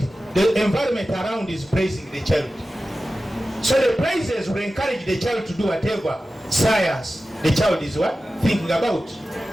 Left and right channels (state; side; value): normal; both; correlation 0.94